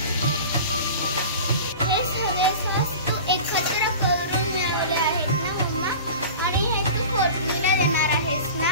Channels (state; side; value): inverted; both; correlation -0.36